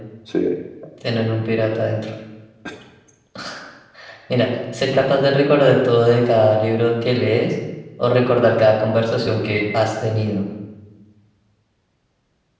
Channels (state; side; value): identical; both; correlation 1.00